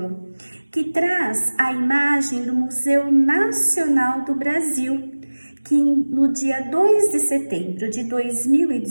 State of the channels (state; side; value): inverted; both; correlation -1.00